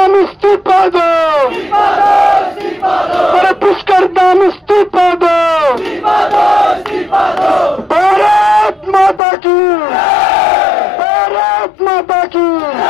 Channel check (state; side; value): drops out; right; at 9.2 s